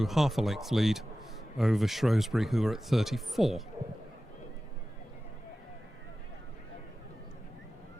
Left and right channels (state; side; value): normal; both; correlation 0.95